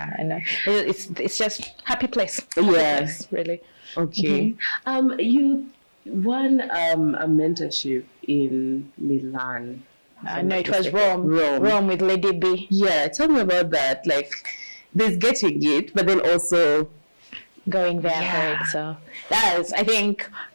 know. It's just happy place. Yes, really. Okay. You won a mentorship in Milan. No, it was Rome with Lady B. Yeah, tell me about that. Like, there's getting it, but then also going there for it. So that is, I think.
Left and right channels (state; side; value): inverted; both; correlation -1.00